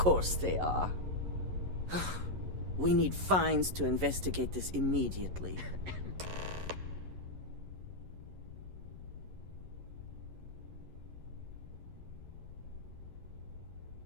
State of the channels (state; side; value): late; left; 11 ms